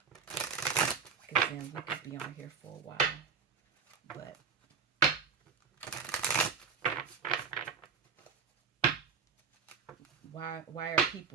Because then we could be on here for a while. But why are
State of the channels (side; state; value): left; quieter; 6.0 dB